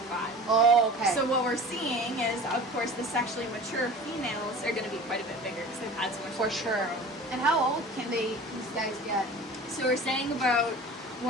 Oh, okay. So what we're seeing is, of course, the sexually mature females are going to be quite a bit bigger because they've had so much. For sure. And how old can these guys get? So we're saying about 100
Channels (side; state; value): both; normal; correlation 0.39